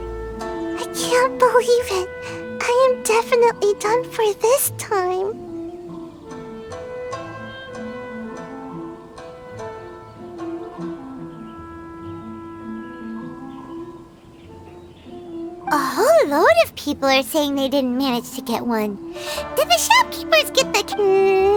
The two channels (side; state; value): both; identical; correlation 1.00